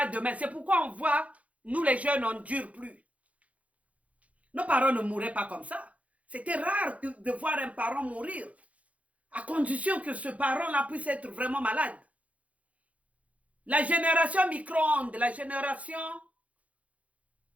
demain? C'est pourquoi on voit, nous les jeunes, on ne dure plus. Nos parents ne mouraient pas comme ça. C'était rare de voir un parent mourir, à condition que ce parent-là puisse être vraiment malade. La génération micro-ondes, la génération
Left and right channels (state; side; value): late; left; 0.066 ms